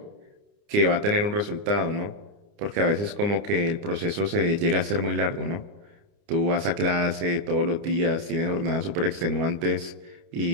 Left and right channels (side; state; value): left; late; 29 ms